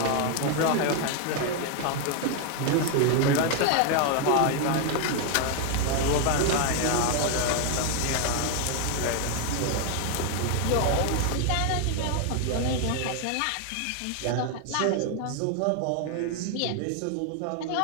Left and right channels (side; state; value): both; different; correlation 0.00